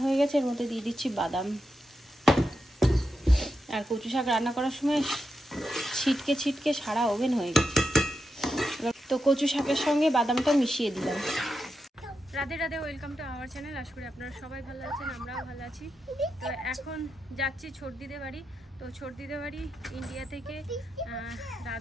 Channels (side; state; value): both; normal; correlation 0.87